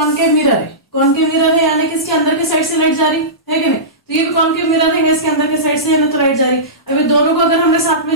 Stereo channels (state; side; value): normal; both; correlation -0.19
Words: मिरर है। कॉनकेव मिरर है यानी कि इसके अंदर के साइड से लाइट जा रही है कि नहीं, तो ये भी कॉनकेव मिरर है, इसके अंदर के साइड से है ना तो लाइट जा रही। अभी दोनों को अगर हमने साथ में